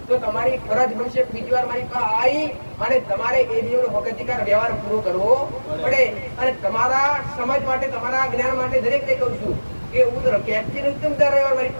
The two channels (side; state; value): both; inverted; correlation -1.00